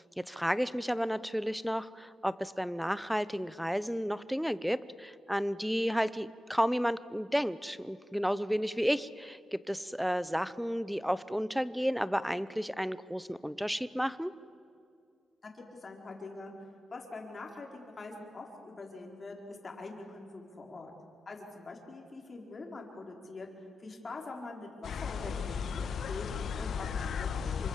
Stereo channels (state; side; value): normal; both; correlation 0.96